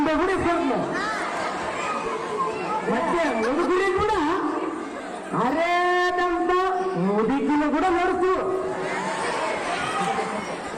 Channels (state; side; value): identical; both; correlation 1.00